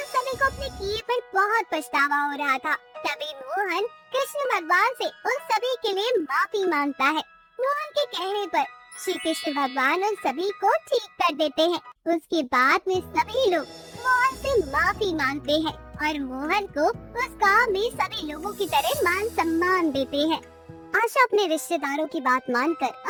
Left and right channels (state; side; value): identical; both; correlation 1.00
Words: सभी को अपने किए पर बहुत पछतावा हो रहा था। तभी मोहन कृष्ण भगवान से उन सभी के लिए माफी मांगता है। मोहन के कहने पर श्री कृष्ण भगवान उन सभी को ठीक कर देते हैं। उसके बाद में सभी लोग मोहन से माफी मांगते हैं और मोहन को उस गांव में सभी लोगों की तरह मान सम्मान देते हैं। आशा अपने रिश्तेदारों की बात मानकर